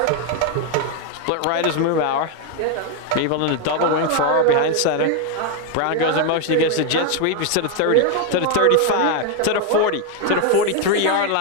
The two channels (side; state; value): both; different; correlation 0.01